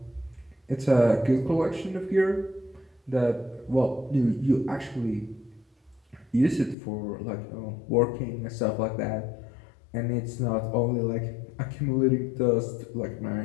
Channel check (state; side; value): drops out; right; at 6.8 s